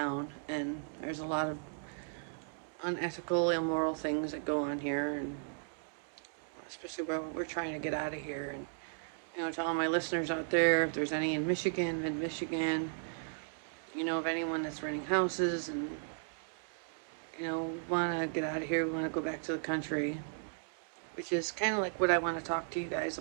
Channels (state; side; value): silent; left; digital silence